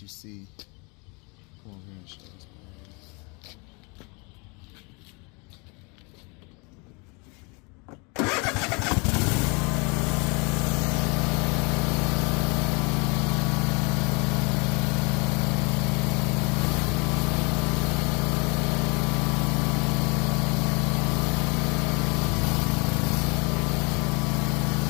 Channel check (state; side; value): quieter; right; 31.0 dB